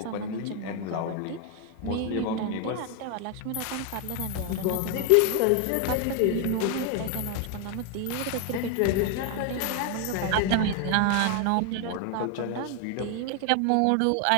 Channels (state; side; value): different; both; correlation 0.01